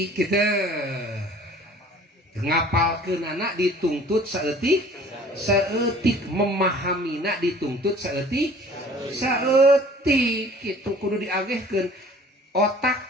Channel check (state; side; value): normal; both; correlation 0.50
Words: kita ngapalkeun anak dituntut saeutik memahaminak dituntut saeutik gitu kudu diagehkeun otak